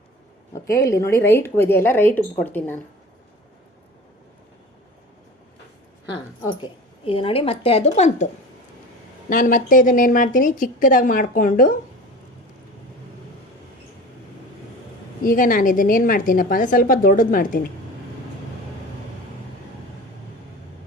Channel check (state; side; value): normal; both; correlation 0.37